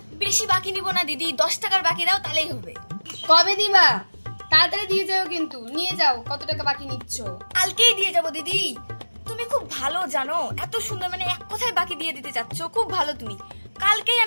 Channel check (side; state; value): both; inverted; correlation -1.00